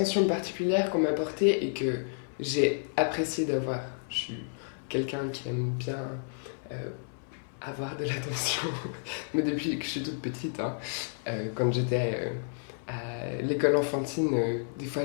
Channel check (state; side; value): silent; right; 57 dB below the other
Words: particulière qu'on m'a portée et que j'ai apprécié d'avoir. Je suis quelqu'un qui aime bien avoir de l'attention, mais depuis que je suis toute petite, quand j'étais à l'école enfantine, des